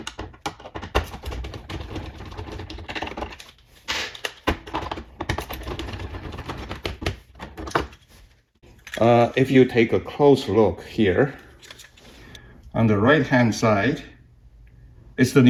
If you take a close look here, on the right hand side is the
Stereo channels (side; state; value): both; identical; correlation 1.00